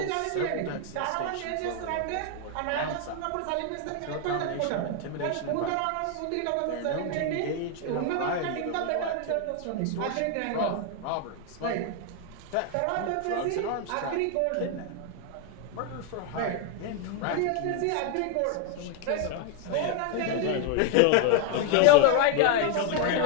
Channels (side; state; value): both; different; correlation 0.01